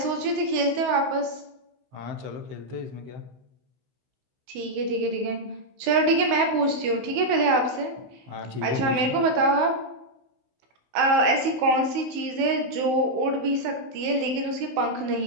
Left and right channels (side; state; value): left; late; 16 ms